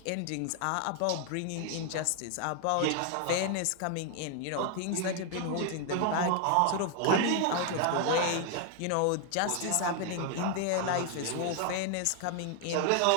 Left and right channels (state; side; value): different; both; correlation 0.00